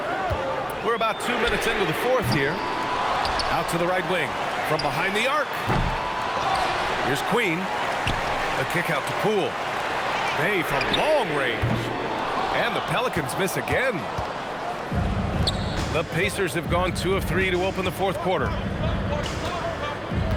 We're about 2 minutes into the fourth here. Out to the right wing. From behind the arc. Here's Queen. The kick out to Poole. Bay from long range. And the Pelicans miss again. The Pacers have gone 2 of 3 to open the fourth quarter.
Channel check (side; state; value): both; identical; correlation 1.00